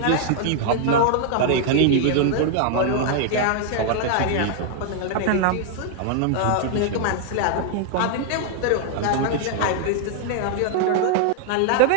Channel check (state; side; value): different; both; correlation 0.00